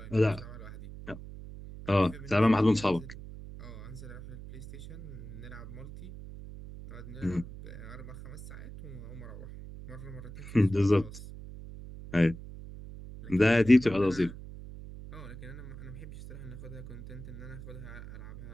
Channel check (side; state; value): right; noise; hum, 13 dB below the sound